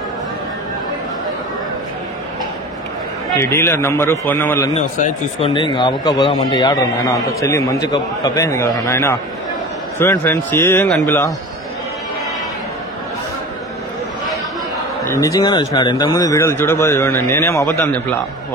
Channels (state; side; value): normal; both; correlation 0.35